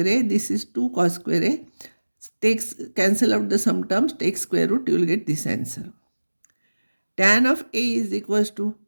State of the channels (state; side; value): inverted; both; correlation -1.00